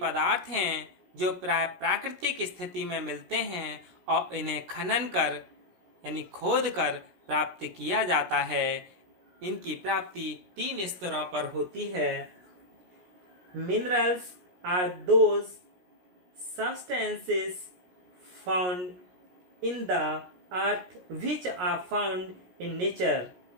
पदार्थ हैं जो प्राय प्राकृतिक स्थिति में मिलते हैं और इन्हें खनन कर यानी खोद कर प्राप्त किया जाता है। इनकी प्राप्ति 3 स्तरों पर होती है। Minerals are those substances found in the earth which are found in nature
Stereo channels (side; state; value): left; late; 17 ms